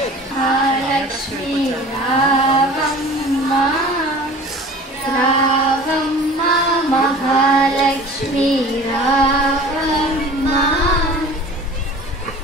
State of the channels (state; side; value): normal; both; correlation 0.43